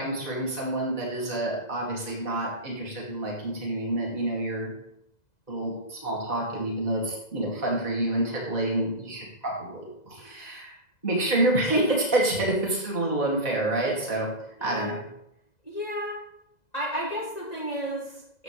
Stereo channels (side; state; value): right; late; 2.0 ms